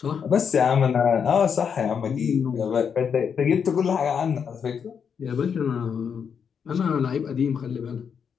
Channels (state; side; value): quieter; right; 7.0 dB